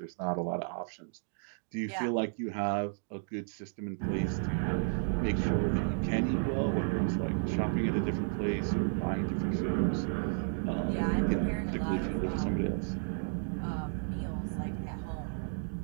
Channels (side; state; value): left; silent; digital silence